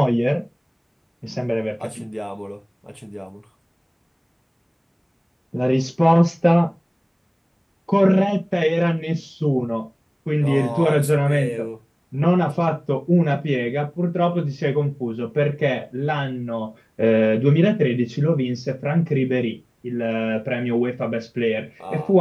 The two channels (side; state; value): both; identical; correlation 1.00